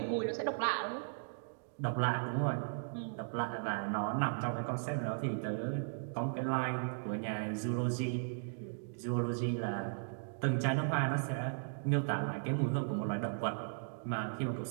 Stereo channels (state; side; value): silent; left; digital silence